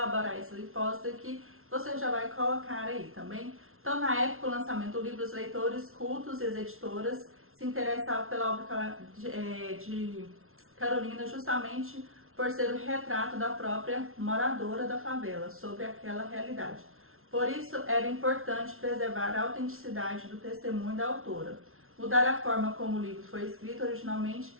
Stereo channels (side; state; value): left; late; 0.62 ms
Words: essa hipótese aqui, você já vai colocar aí também. Então, na época do lançamento do livro, os leitores cultos e as editoras se interessavam pela obra de Carolina justamente por ser o retrato da própria moradora da favela sobre aquela realidade. Por isso, era importante preservar a autenticidade do testemunho da autora. Mudar a forma como o livro foi escrito originalmente